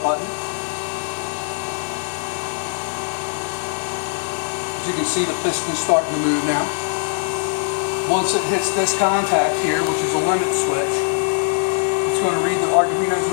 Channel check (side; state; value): right; silent; digital silence